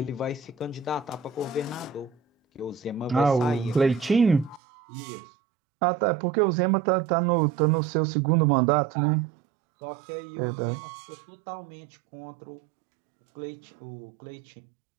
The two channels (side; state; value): left; drops out; at 4.6 s